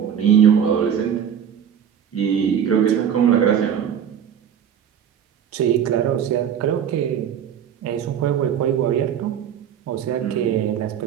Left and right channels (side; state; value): left; quieter; 8.7 dB